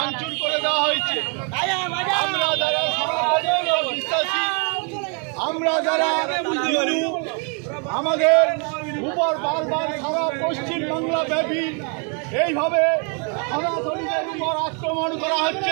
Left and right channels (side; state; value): left; quieter; 38.3 dB